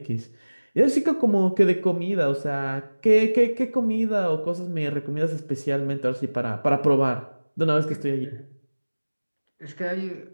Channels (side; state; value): both; inverted; correlation -1.00